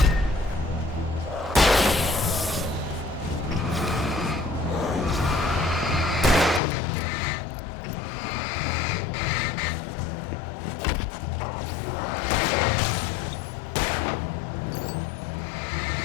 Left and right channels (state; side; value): drops out; right; at 6.6 s